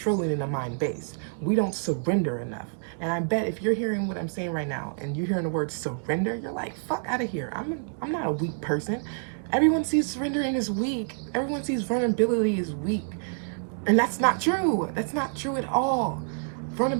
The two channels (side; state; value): left; silent; digital silence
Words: in a mind base. We don't surrender enough. And I bet if you're hearing what I'm saying right now and you're hearing the word surrender, you're like, fuck out of here. I'm not a weak person. Everyone sees surrendering as weak. Everyone sees vulnerability as weak. And that's not true. That's not true at all.